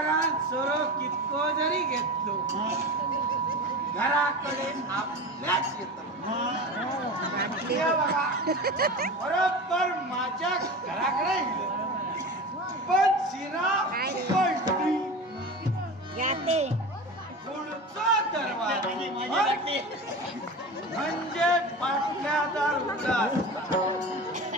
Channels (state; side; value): normal; both; correlation 0.30